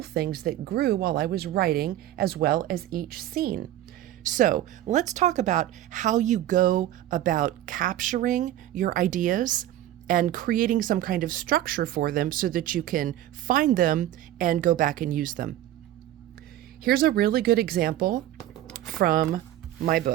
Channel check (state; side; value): quieter; left; 13.4 dB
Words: things that grew while I was writing, as well as each scene. So let's talk about how you go about capturing your ideas and creating some kind of structure for them so that you can find them and go back and use them. Here's a really good example from my